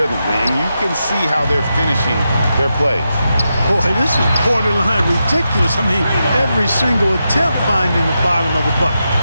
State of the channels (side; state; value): both; inverted; correlation -0.87